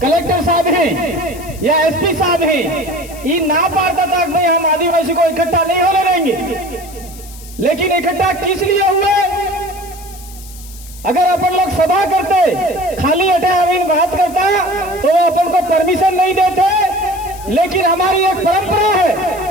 कलेक्टर साहब हैं या एसपी साहब हैं, ये ना पाता था कि भाई हम आदिवासी को इकट्ठा नहीं होने देंगे। लेकिन इकट्ठा किस लिए हुए? अगर अपन लोग सभा करते खाली अटे अमीन बात करता तो वो अपन को परमिशन नहीं देते। लेकिन हमारी एक परंपरा है,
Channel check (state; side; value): noise; left; hiss, 18 dB below the sound